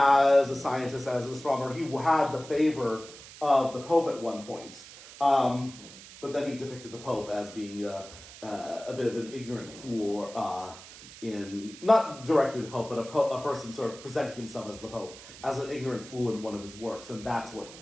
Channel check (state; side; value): noise; right; hiss, 17 dB below the sound